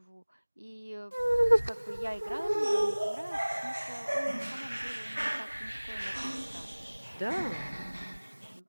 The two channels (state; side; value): inverted; both; correlation -1.00